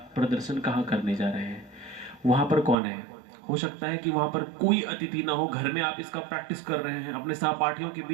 प्रदर्शन कहाँ करने जा रहे हैं, वहां पर कौन है। हो सकता है कि वहां पर कोई अतिथि ना हो, घर में आप इसका प्रैक्टिस कर रहे हैं, अपने सहपाठियों के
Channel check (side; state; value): left; drops out; at 2.8 s